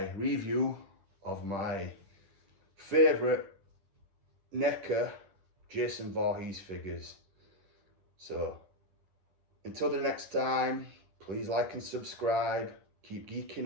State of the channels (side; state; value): left; late; 10 ms